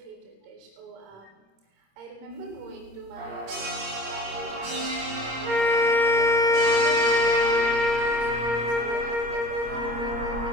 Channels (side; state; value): left; late; 26 ms